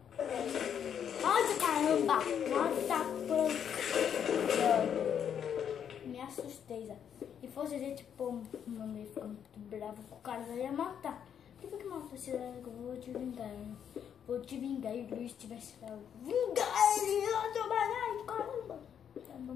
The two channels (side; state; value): right; quieter; 8.5 dB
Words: Nossa, caramba! Nossa, me assustei, já. Se fosse a gente, pô, mano, ia ficar muito bravo com o cara, já ia matar. Por que mata esse cara que eu vou te vingar? Vou te vingar e o Luiz tivesse lá. Vingar ele! Ai, caramba! Tá